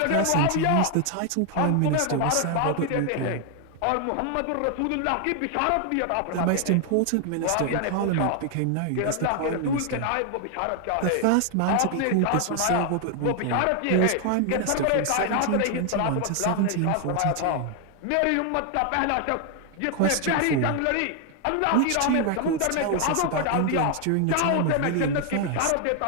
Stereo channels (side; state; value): both; different; correlation 0.00